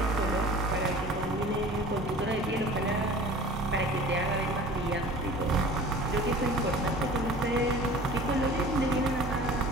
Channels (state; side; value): normal; both; correlation 0.43